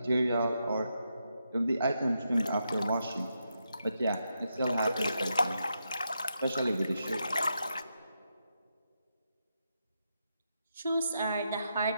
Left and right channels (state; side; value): inverted; both; correlation -0.84